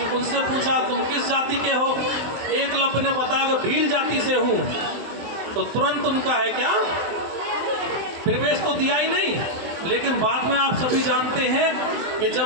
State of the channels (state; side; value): late; left; 24 ms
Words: उनसे पूछा तुम किस जाति के हो? एकलव्य ने बताया कि भील जाति से हूँ। तो तुरंत उनका है क्या, प्रवेश तो दिया ही नहीं। लेकिन बाद में आप सभी जानते हैं कि